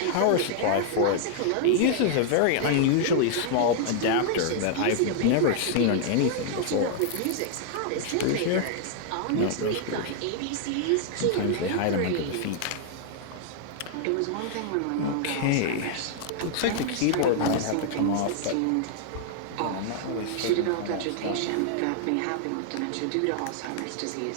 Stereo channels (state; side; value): different; both; correlation -0.01